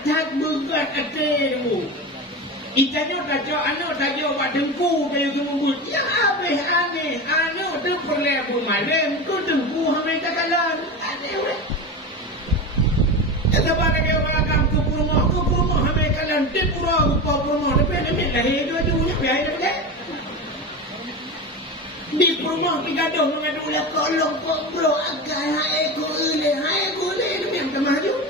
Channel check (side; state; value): both; normal; correlation 0.24